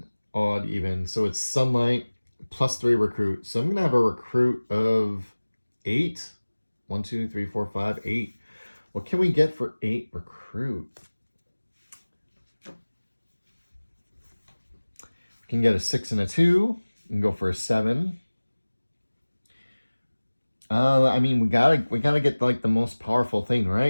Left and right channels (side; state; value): both; inverted; correlation -1.00